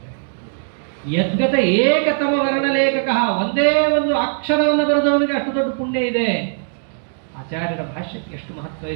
ಯದ್ಗತ ಏಕತಮ ವರ್ಣಲೇಖಕ, ಒಂದೇ ಒಂದು ಅಕ್ಷರವನ್ನು ಬರೆದವನಿಗೆ ಅಷ್ಟು ದೊಡ್ಡ ಪುಣ್ಯ ಇದೆ. ಆಚಾರ್ಯರ ಭಾಷ್ಯಕ್ಕೆ ಎಷ್ಟು ಮಹತ್ವ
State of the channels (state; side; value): silent; left; digital silence